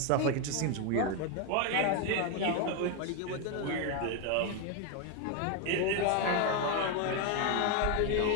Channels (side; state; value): both; different; correlation 0.01